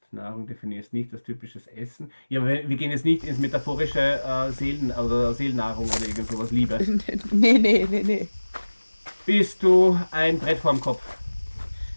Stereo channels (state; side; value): inverted; both; correlation -1.00